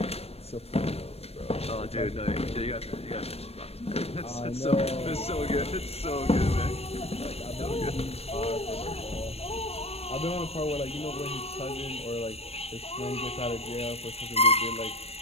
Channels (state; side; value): late; right; 0.29 ms